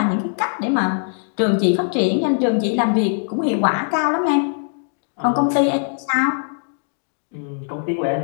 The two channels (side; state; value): right; silent; digital silence